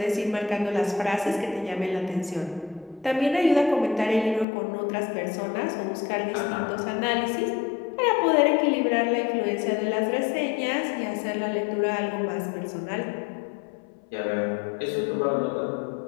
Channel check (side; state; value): right; drops out; at 4.5 s